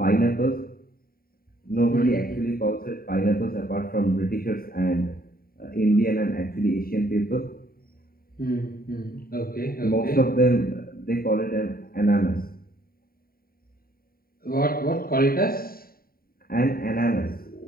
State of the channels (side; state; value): right; late; 0.43 ms